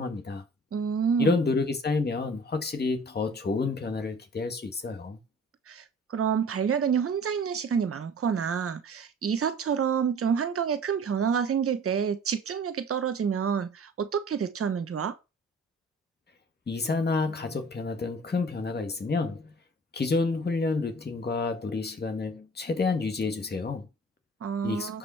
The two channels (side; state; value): both; normal; correlation 0.46